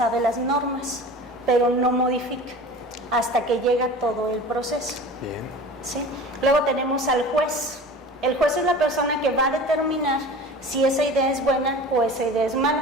las normas, pero no modifica hasta que llega todo el proceso. Bien. ¿Sí? Luego tenemos al juez. El juez es la persona que va a determinar si esa idea es buena o esa idea es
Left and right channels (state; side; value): normal; both; correlation 0.38